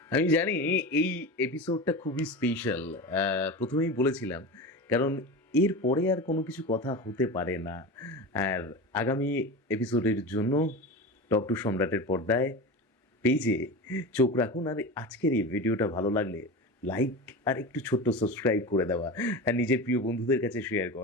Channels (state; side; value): normal; both; correlation 0.27